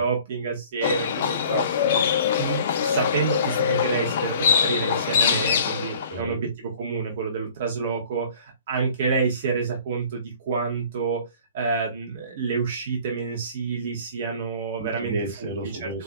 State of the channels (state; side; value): inverted; both; correlation -0.49